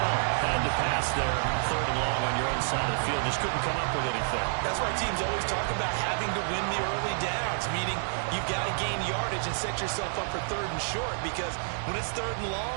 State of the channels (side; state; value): left; silent; digital silence